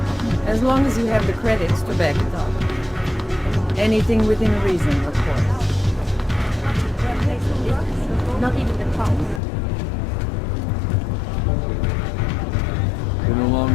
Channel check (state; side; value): drops out; right; at 9.4 s